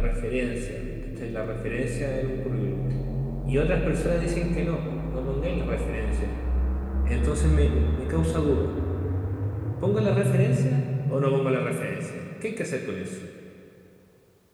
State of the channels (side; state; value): both; identical; correlation 1.00